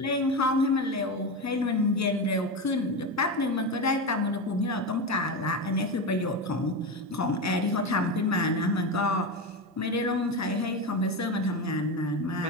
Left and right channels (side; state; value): both; normal; correlation 0.18